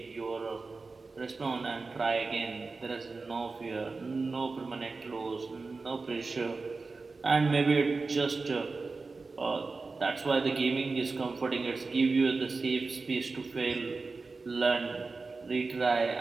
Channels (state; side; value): quieter; left; 4.0 dB